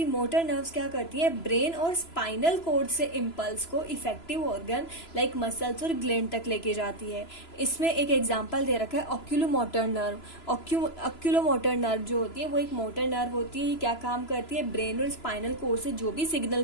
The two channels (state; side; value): late; right; 3.0 ms